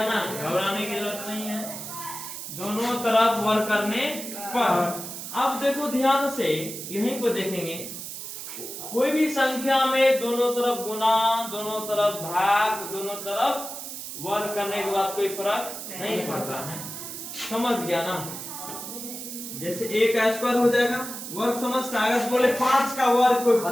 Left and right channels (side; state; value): right; noise; hiss, 9 dB below the sound